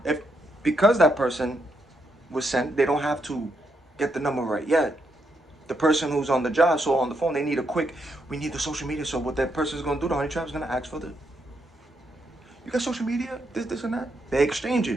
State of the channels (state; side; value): normal; both; correlation 0.79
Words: if, because that person was sent, they don't have to get the number right yet. The person who's on the job, so on the phone, they need we need the social media. So what that person's gonna do, the honey trap's gonna ask for you got social media, this and that. They exchange